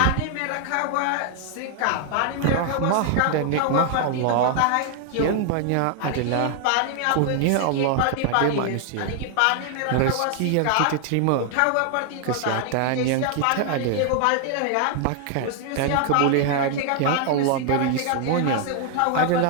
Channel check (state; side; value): different; both; correlation 0.00